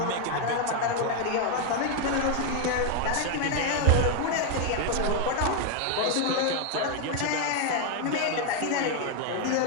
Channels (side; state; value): both; different; correlation 0.01